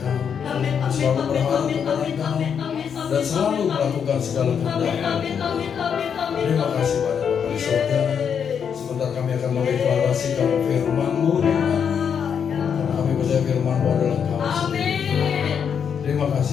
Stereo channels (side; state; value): right; quieter; 7.4 dB